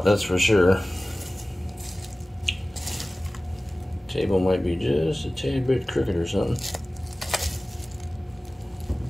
that's for sure. Table might be just a tad bit crooked or something.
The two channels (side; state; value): both; normal; correlation 0.97